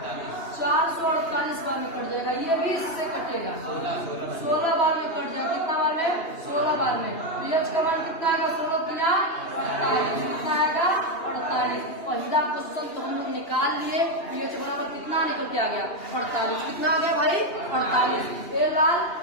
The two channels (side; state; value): right; late; 2.8 ms